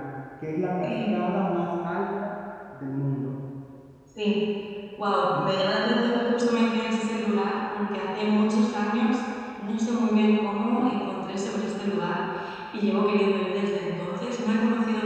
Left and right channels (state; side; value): identical; both; correlation 1.00